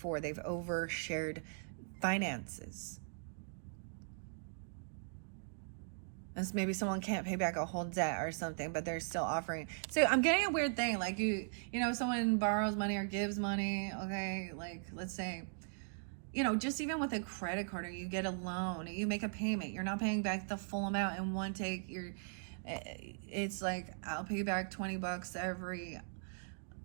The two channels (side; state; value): left; silent; digital silence